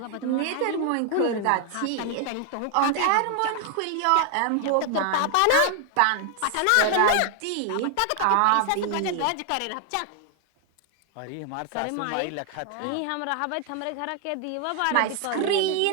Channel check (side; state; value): both; different; correlation 0.00